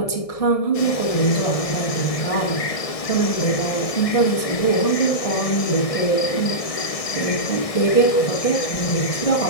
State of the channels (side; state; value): right; late; 1.6 ms